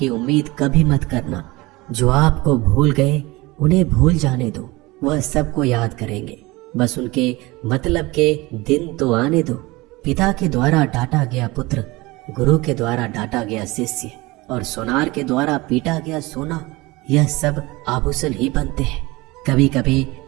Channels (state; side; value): quieter; left; 22.1 dB